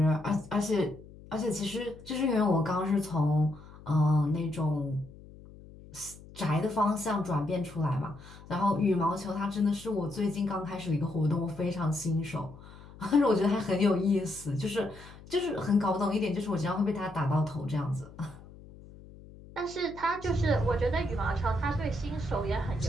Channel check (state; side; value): noise; left; hum, 19 dB below the sound